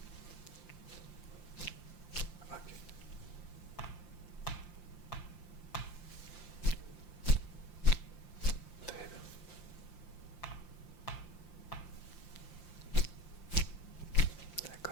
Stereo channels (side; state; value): right; late; 5.8 ms